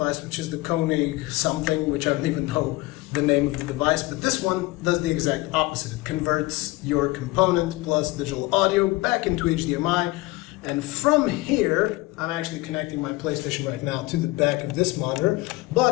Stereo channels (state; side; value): quieter; right; 20.8 dB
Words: which is the Koenig something, which I don't even know the name of the device, but this one does the exact opposite. It converts your component plus digital audio back into HDMI, and from here, I'm actually connecting my PlayStation right now to the back of this monitor,